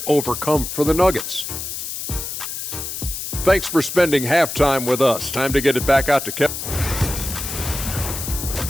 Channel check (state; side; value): noise; left; hiss, 6 dB below the sound